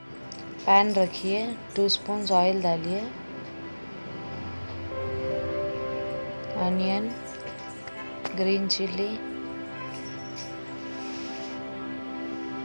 पैन रखिए, 2 स्पून ऑयल डालिए, अनियन, ग्रीन चिली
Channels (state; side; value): inverted; both; correlation -1.00